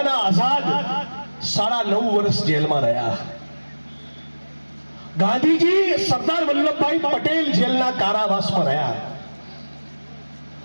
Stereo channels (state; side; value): inverted; both; correlation -1.00